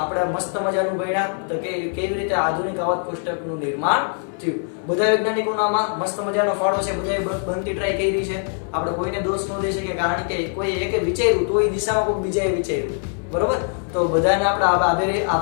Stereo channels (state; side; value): silent; right; 55 dB below the other